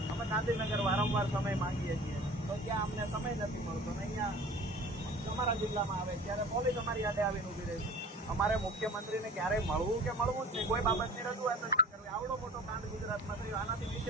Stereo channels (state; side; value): normal; both; correlation 0.42